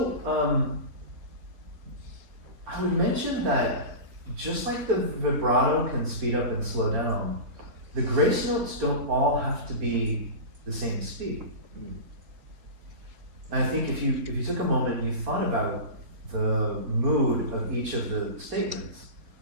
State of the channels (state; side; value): late; left; 4.2 ms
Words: I would mention that just like the vibrato can speed up and slow down, the grace notes don't all have to be the same speed. And I think if you took a moment and you thought about the mood of each of the statements,